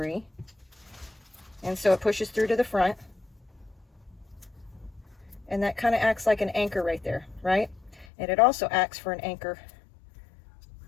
and so it pushes through to the front, and that kind of acts like an anchor right there, right? And it also acts for an anchor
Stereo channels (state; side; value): drops out; right; at 8.1 s